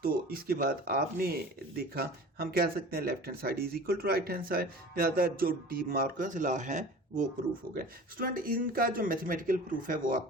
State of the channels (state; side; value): normal; both; correlation 0.40